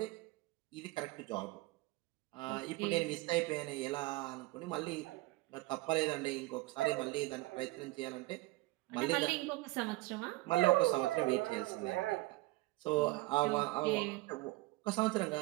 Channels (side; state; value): left; quieter; 20.9 dB